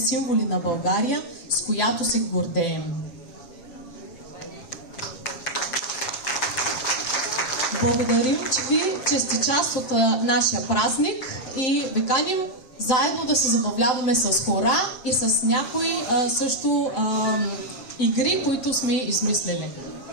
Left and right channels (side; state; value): right; late; 7.7 ms